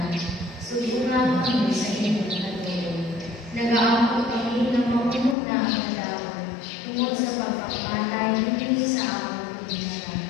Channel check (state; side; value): drops out; right; at 5.4 s